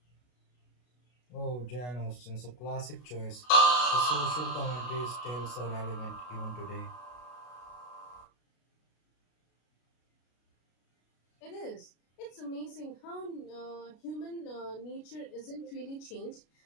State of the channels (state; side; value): late; right; 33 ms